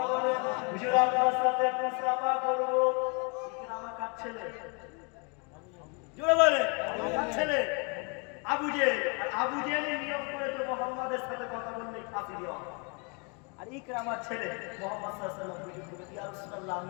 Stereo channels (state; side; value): quieter; right; 33.9 dB